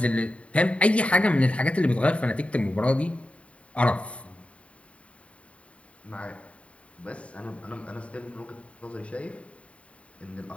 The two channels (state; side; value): late; right; 0.064 ms